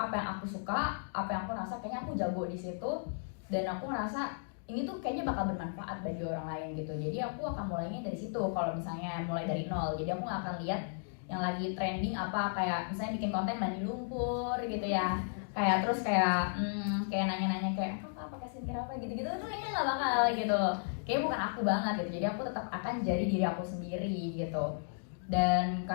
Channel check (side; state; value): right; silent; digital silence